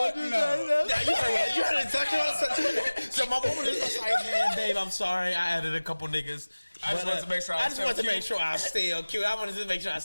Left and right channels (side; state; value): both; inverted; correlation -1.00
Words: you say? You heard exactly what I said. So my woman is just like, man, Dave, I'm sorry, I added a couple niggas. I just wanted to make sure I was still cute. I wanted to make sure I